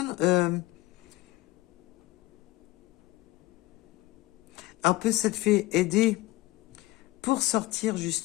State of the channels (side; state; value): right; quieter; 18.7 dB